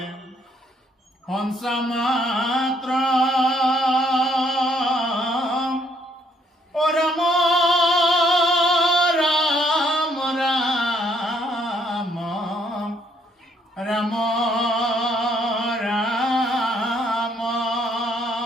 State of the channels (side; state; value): both; normal; correlation 0.69